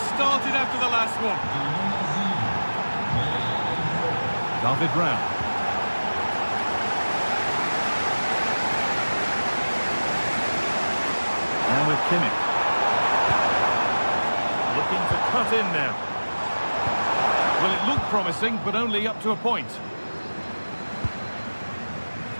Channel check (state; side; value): inverted; both; correlation -1.00